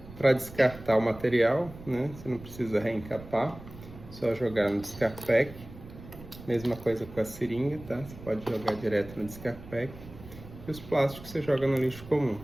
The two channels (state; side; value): noise; right; rumble, 16 dB below the sound